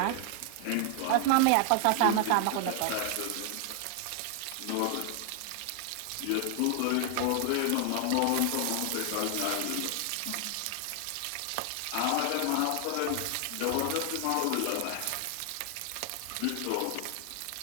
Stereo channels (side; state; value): both; different; correlation 0.00